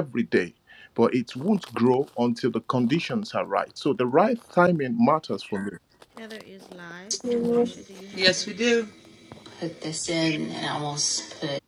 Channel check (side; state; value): both; identical; correlation 1.00